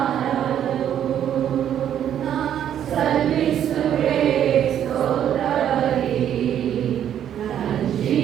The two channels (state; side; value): quieter; left; 10.0 dB